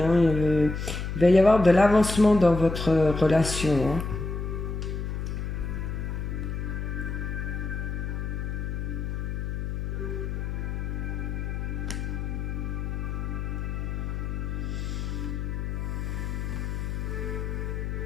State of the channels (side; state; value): left; noise; hum, 3 dB below the sound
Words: Hein. Il va y avoir de l'avancement dans votre relation. Hein.